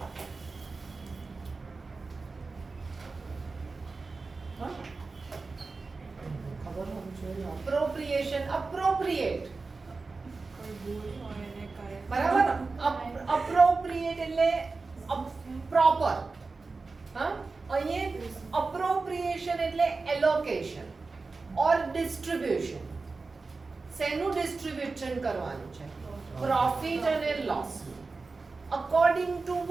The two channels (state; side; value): quieter; left; 4.0 dB